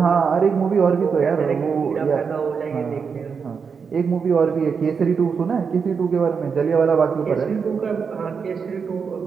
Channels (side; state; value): left; quieter; 5.9 dB